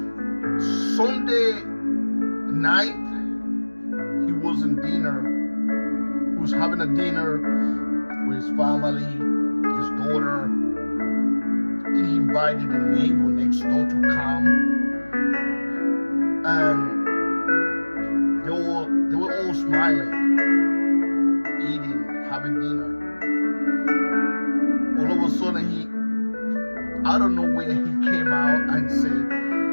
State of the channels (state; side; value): inverted; both; correlation -1.00